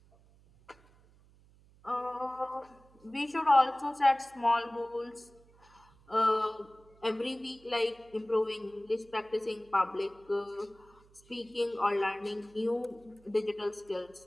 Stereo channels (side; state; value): right; noise; hum, 28 dB below the sound